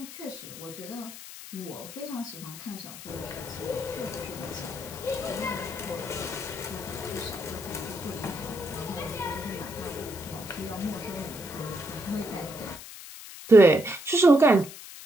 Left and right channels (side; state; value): left; noise; hiss, 13 dB below the sound